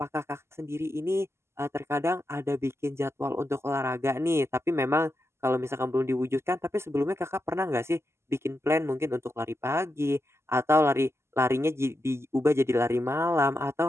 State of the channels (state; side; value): late; left; 0.13 ms